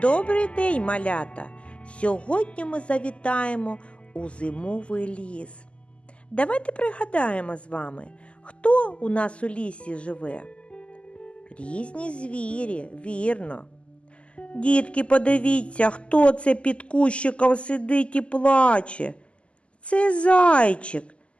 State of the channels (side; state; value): right; late; 0.056 ms